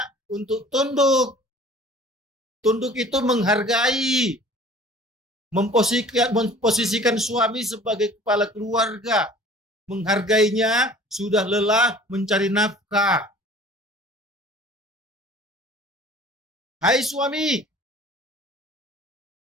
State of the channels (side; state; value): both; normal; correlation 0.47